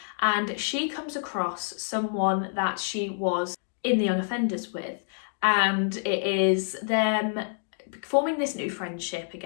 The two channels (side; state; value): right; silent; digital silence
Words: and she comes across someone that she was in the young offenders with, and it is them forming this new friendship